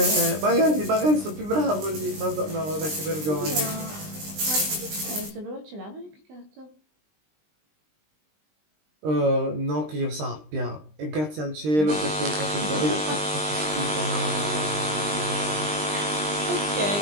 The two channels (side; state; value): left; late; 20 ms